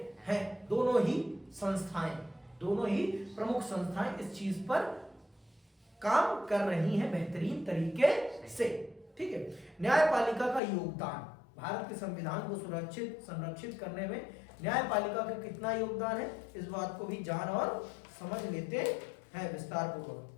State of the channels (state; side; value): drops out; right; at 10.6 s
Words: हैं। दोनों ही प्रमुख संस्थाएं इस चीज पर काम कर रही हैं बेहतरीन तरीके से। ठीक है, न्यायपालिका का योगदान, भारत के संविधान को संरक्षित करने में न्यायपालिका का कितना योगदान है, इस बात को भी जान और समझ लेते हैं विस्तार पूर्वक।